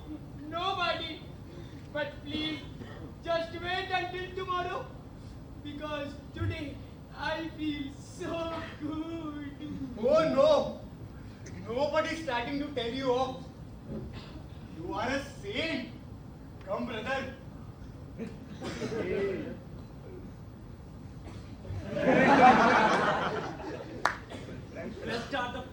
nobody. But please, just wait until tomorrow. Because today I feel so good. Oh no! Nobody's starting to tell you off. You are a saint. Come, brother. Blessed are the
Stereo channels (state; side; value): identical; both; correlation 1.00